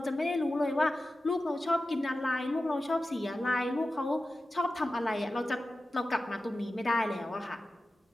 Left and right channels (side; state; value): both; normal; correlation 0.94